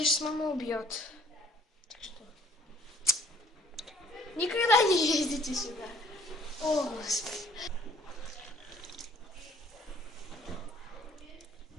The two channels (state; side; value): normal; both; correlation 0.59